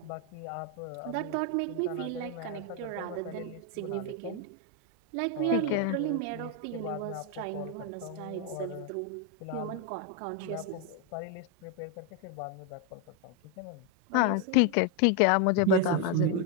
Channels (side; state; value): both; different; correlation 0.02